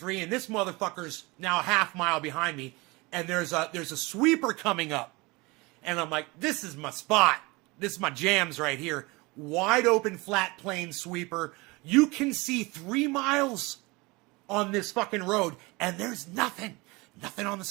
and this motherfucker's now a half mile behind me, and there's a sweeper coming up. And I'm like, this is my spot. This is my jams right here. Wide open, flat plane sweeper. You can see 3 miles on this fucking road, and there's nothing. Nothing on the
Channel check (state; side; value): quieter; left; 24.5 dB